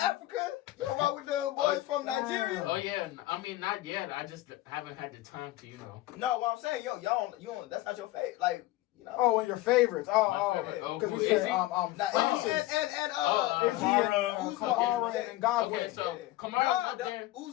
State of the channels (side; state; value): right; quieter; 16.7 dB